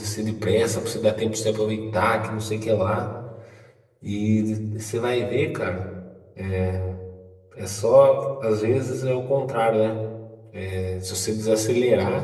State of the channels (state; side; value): identical; both; correlation 1.00